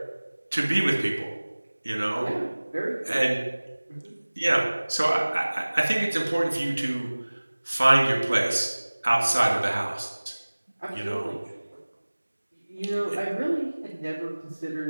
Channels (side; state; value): both; inverted; correlation -1.00